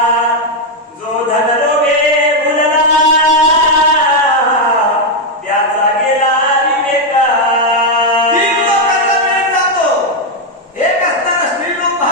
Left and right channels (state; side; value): normal; both; correlation 0.02